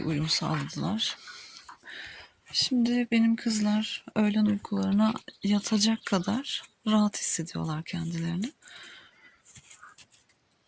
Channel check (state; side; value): identical; both; correlation 1.00